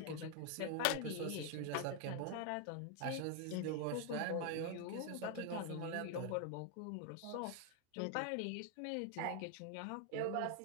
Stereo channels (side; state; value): both; different; correlation 0.00